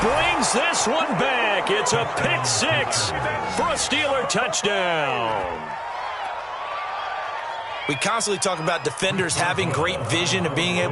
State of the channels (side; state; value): both; identical; correlation 1.00